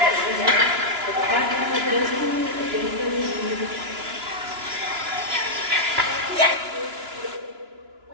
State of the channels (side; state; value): left; late; 2.9 ms